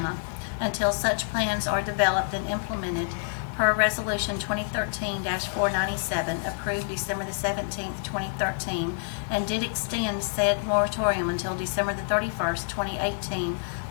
until such plans are developed and implemented per Resolution 2013-497, approved December the 17th, 2013, and did extend said moratorium until December the 31st, 2018,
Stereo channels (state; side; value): silent; right; digital silence